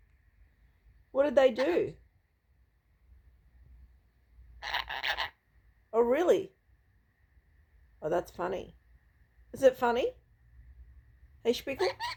What did they do? Oh, really? Oh, that's funny. Is it funny? Hey, Spickle?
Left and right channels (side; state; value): both; identical; correlation 1.00